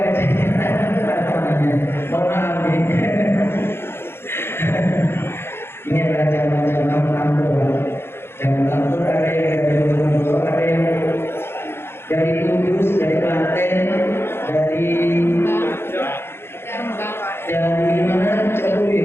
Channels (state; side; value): late; right; 0.11 ms